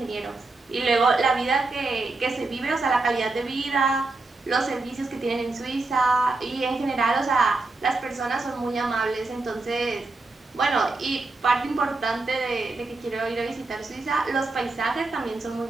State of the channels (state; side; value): quieter; left; 3.4 dB